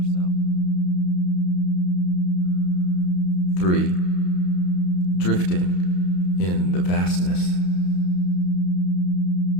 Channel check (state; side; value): late; right; 33 ms